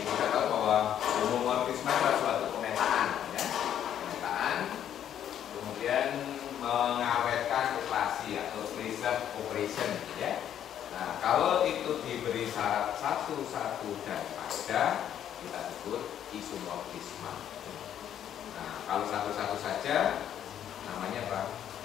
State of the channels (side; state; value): right; quieter; 10.1 dB